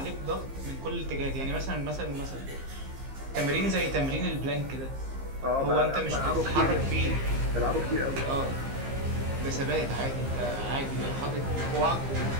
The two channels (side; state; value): left; late; 15 ms